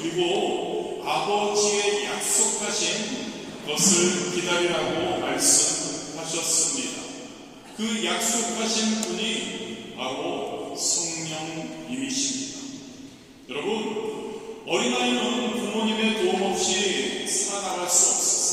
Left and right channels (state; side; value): identical; both; correlation 1.00